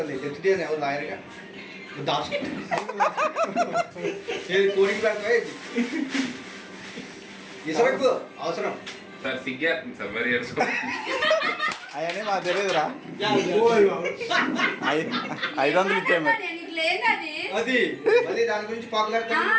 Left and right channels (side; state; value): both; identical; correlation 1.00